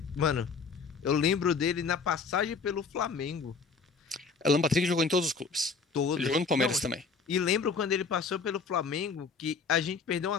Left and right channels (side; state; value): right; quieter; 5.0 dB